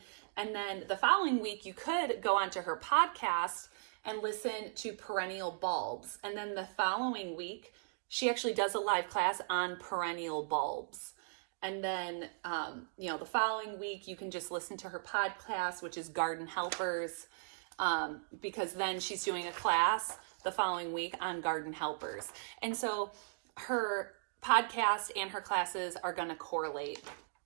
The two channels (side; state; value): left; silent; digital silence